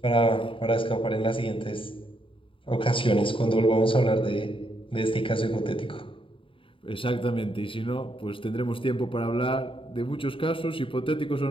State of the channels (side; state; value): right; late; 0.25 ms